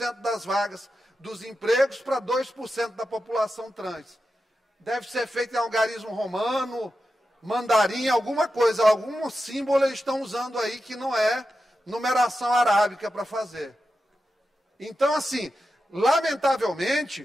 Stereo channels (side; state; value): both; normal; correlation 0.90